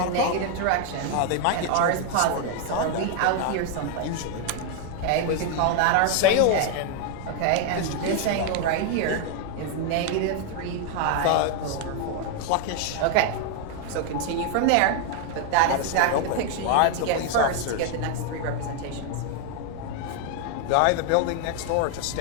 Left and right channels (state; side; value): different; both; correlation 0.00